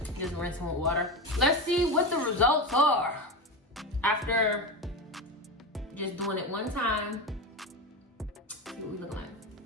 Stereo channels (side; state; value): both; normal; correlation 0.20